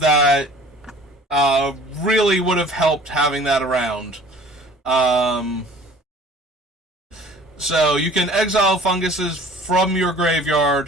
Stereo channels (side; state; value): both; normal; correlation 0.48